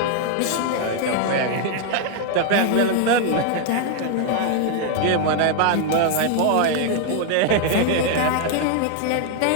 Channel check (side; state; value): both; different; correlation 0.00